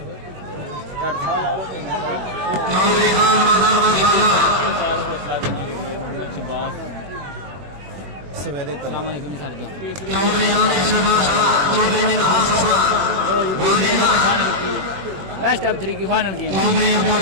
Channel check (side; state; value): left; late; 21 ms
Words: सवेरे बेस्ट ऑफ 3 की फाइनल गेम